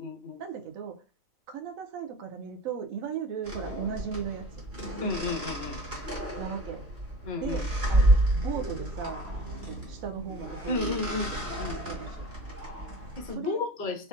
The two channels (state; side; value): late; left; 3.0 ms